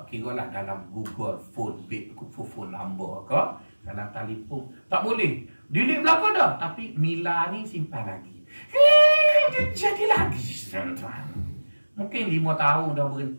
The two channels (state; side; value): inverted; both; correlation -1.00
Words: kira lah dalam Google phone number ke, dalam telefon, tak boleh. Delete belakang dah, tapi Mila ni simpan lagi. Dia jadi lagi, tuan-tuan. Mungkin 5 tahun dah